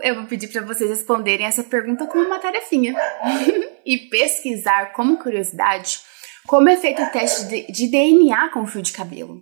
eu vou pedir para vocês responderem essa pergunta com uma tarefinha e pesquisar como curiosidade como é feito o teste de DNA com o fio de cabelo.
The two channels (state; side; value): silent; left; 60 dB below the other